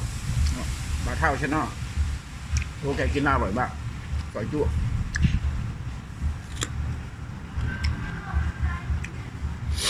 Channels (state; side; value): identical; both; correlation 1.00